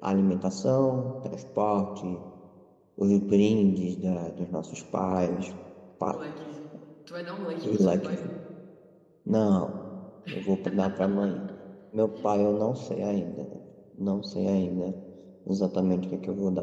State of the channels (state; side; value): identical; both; correlation 1.00